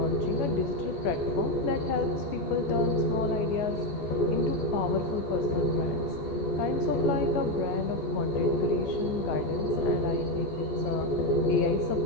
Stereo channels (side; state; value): right; late; 14 ms